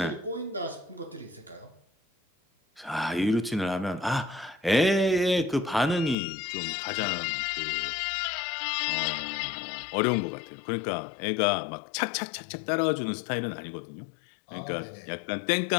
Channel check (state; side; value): drops out; right; at 6.2 s